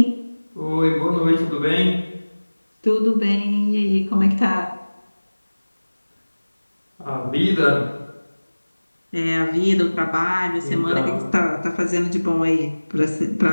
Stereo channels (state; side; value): inverted; both; correlation -1.00